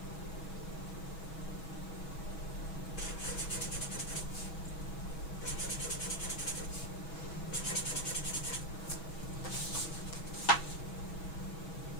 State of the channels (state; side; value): late; right; 6.2 ms